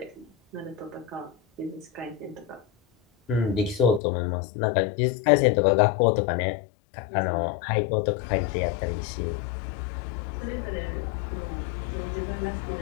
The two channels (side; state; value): right; drops out; at 4.0 s